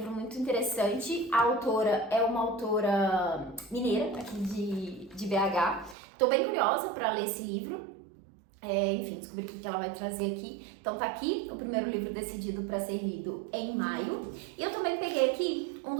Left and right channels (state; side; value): drops out; left; at 6.0 s